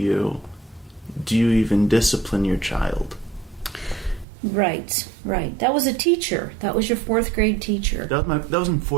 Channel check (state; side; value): drops out; left; at 4.2 s